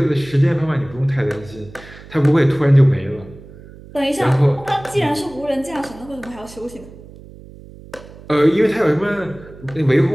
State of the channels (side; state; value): right; noise; hum, 19 dB below the sound